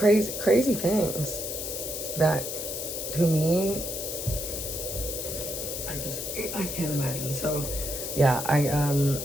things that to me I can't imagine. So yeah, I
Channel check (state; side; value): noise; left; hiss, 5 dB below the sound